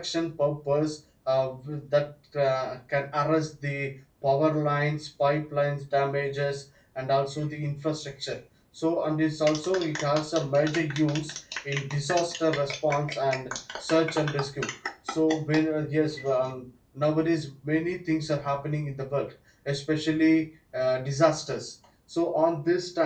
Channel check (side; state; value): both; identical; correlation 1.00